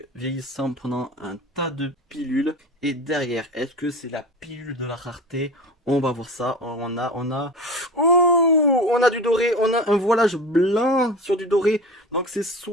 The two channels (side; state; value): both; normal; correlation 0.33